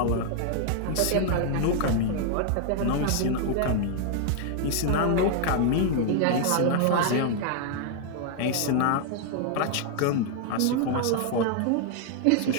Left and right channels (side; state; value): both; different; correlation 0.00